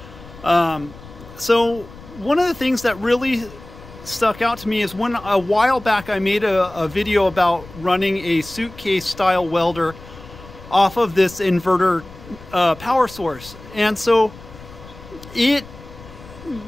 So one of the things that really stuck out to me is when a while back I made a video about running a suitcase style welder off of this inverter power source. And so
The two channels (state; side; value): noise; left; rumble, 18 dB below the sound